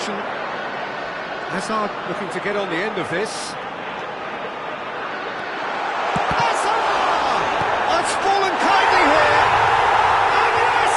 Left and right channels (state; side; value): identical; both; correlation 1.00